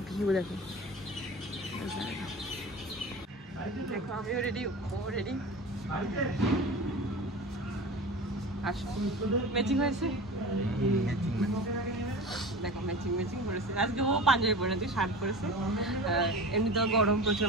ভিউ দেখো। দেখো আমিও রেডি, ও রেডি। আসো ম্যাচিং হয়েছে। দেখো ম্যাচিং করেছে। আজকে ও পাঞ্জাবি পরে, তুই শার্ট পরেছে। এমনিতেও গরম প্রচুর।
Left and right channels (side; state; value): both; normal; correlation 0.33